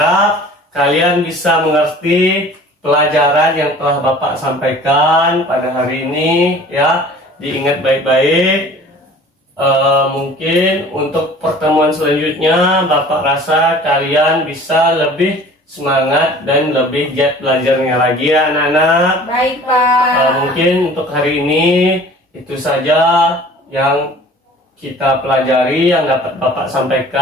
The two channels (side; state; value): both; normal; correlation 0.46